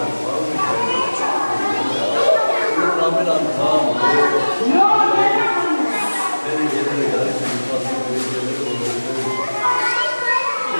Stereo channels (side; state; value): both; inverted; correlation -1.00